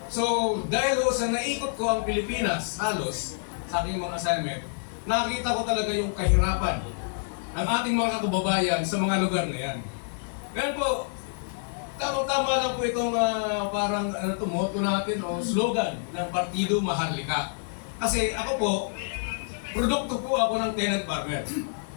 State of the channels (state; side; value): silent; right; digital silence